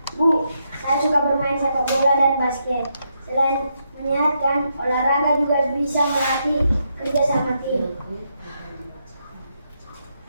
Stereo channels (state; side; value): inverted; both; correlation -0.80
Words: Bu, saya suka bermain sepak bola dan basket. Selain menyehatkan, olahraga juga bisa melatih kerja sama tim.